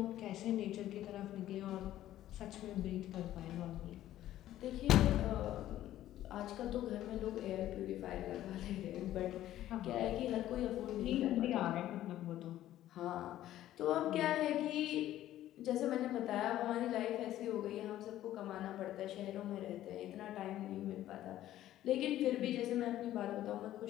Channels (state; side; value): quieter; right; 13.3 dB